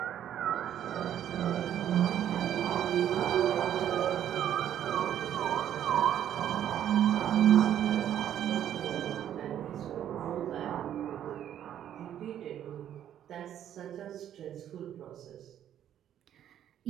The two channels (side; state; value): left; quieter; 10.5 dB